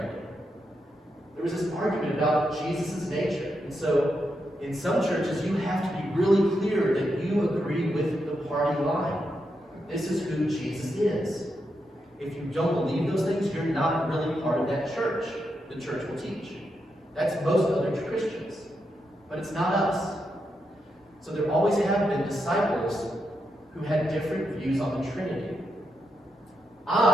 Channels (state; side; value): normal; both; correlation 0.84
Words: There was this argument about Jesus' nature, and so in some churches, you have to be really clear that you agree with the party line. This is who Jesus is. If you don't believe those things, you're not really part of that church. The church will teach. That's most other Christians. But it's not us. So there always have been disciples who had different views on the Trinity.